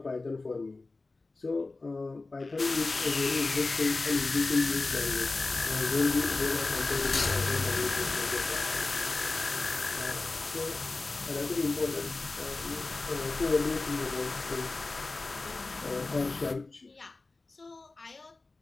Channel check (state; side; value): quieter; right; 3.4 dB